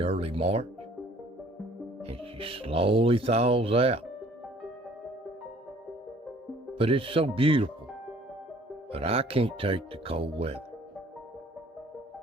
early March, and she slowly thaws out. But it's so beautiful, but I can't take the cold weather.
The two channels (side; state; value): both; normal; correlation 0.55